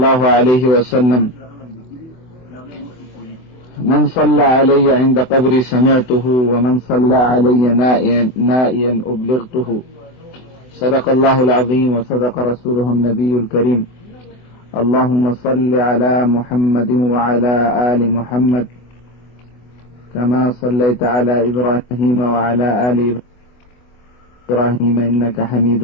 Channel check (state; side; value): late; right; 24 ms